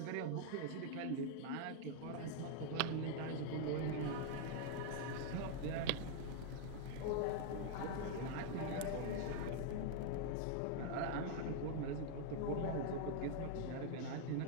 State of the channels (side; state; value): both; different; correlation 0.00